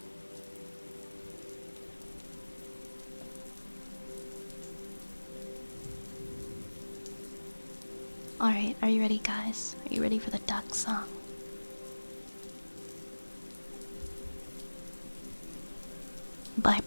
Alright, are you ready, guys? Are you ready for the duck song? By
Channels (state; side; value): inverted; both; correlation -1.00